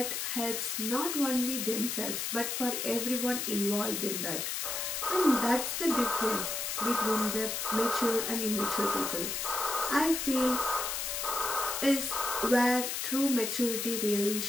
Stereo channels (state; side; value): noise; left; hiss, 2 dB below the sound